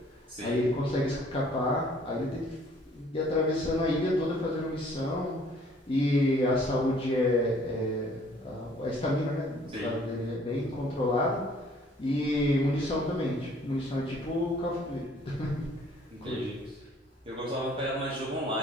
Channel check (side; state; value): both; normal; correlation 0.58